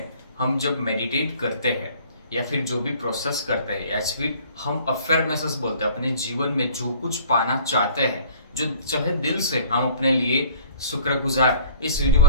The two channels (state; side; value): inverted; both; correlation -0.51